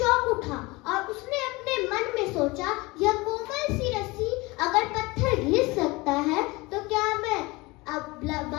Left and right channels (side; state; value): right; quieter; 23.2 dB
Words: उठा और उसने अपने मन में सोचा, यह कोमल सी रस्सी अगर पत्थर घिस सकता है तो क्या मैं